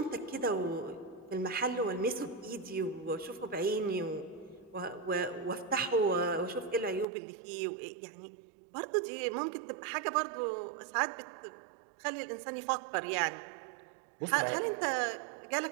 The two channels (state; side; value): drops out; left; at 7.1 s